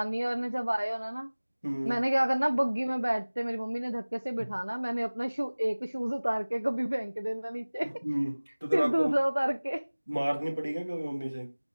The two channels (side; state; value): both; inverted; correlation -1.00